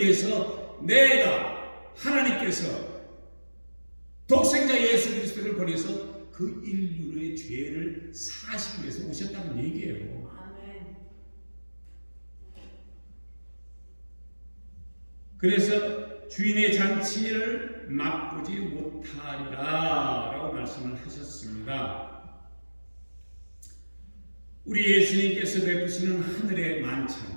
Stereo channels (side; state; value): both; inverted; correlation -1.00